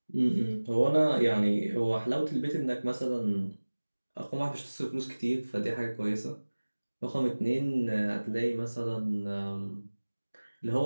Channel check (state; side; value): inverted; both; correlation -1.00